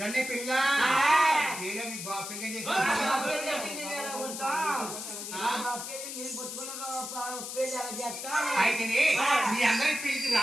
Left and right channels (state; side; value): noise; left; hiss, 7 dB below the sound